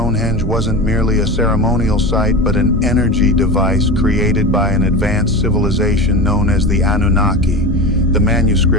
wasn't merely a ceremonial site, but an energy device created by an advanced civilization known as the Anunnaki. The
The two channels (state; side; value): normal; both; correlation 0.26